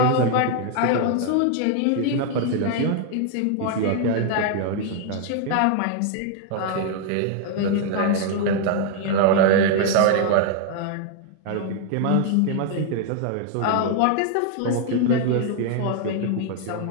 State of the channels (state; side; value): different; both; correlation 0.00